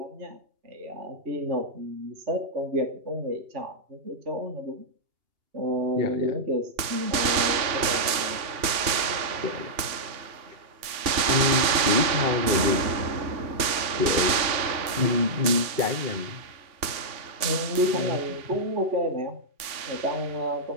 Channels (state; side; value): late; left; 2.8 ms